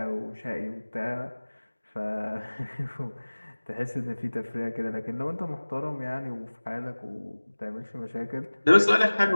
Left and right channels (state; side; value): inverted; both; correlation -1.00